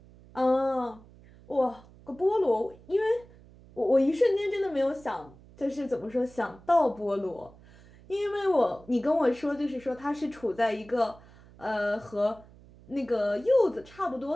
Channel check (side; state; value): right; noise; hum, 23 dB below the sound